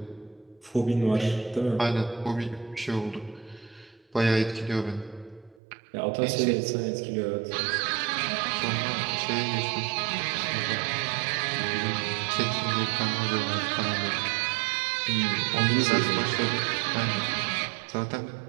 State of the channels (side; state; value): left; drops out; at 5.6 s